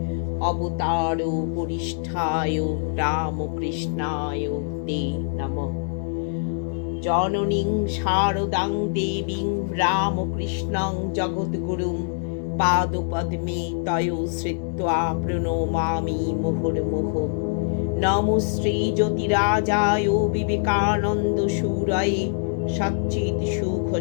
অবতার বরিষ্ঠায় রামকৃষ্ণায় তে নমঃ। জননীং শারদাং দেবীং রামকৃষ্ণং জগদ্গুরুং পাদপদ্মে তয়ো শ্রিত্বা প্রণমামি মুহুর্মুহুঃ। নমো শ্রী জ্যোতিরাজায় বিবেকানন্দ সুরায়ে সচ্চিৎ সুখ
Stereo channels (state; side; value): silent; right; digital silence